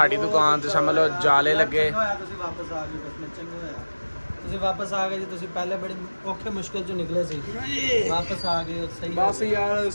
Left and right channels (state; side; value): inverted; both; correlation -1.00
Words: दुकान ਤੇ ਸਮਝ ਲਓ ਜਾਲੇ ਲੱਗੇ। ਤੁਸੀਂ ਵਾਪਸ ਆ ਗਏ, ਬਸ ਚੰਗਾ ਹੋਇਆ ਤੁਸੀਂ ਵਾਪਸ ਆ ਗਏ ਜੀ। ਤੁਸੀਂ ਪਹਿਲੇ ਬੜੀ ਔਖੇ ਮੁਸ਼ਕਲ ਚੋਂ ਨਿਕਲੇ ਸੀ, ਵਾਪਸ ਆ ਗਏ ਸਹੀ। ਬਸ ਯਾਰ